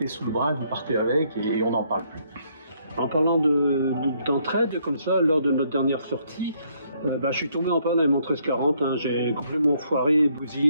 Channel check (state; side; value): inverted; both; correlation -0.70